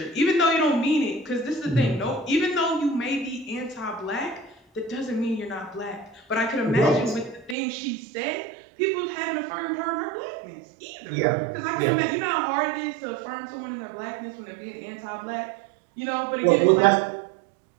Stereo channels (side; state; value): left; drops out; at 7.6 s